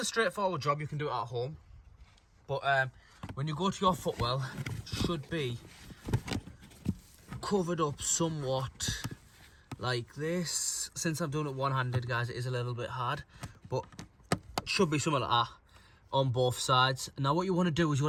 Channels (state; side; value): identical; both; correlation 1.00